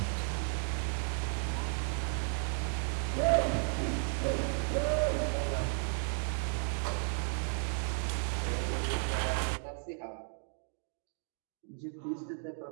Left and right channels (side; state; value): left; silent; 55 dB below the other